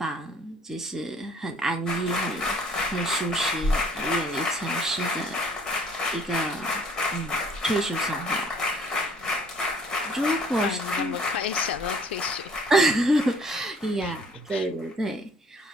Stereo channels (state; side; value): normal; both; correlation 0.56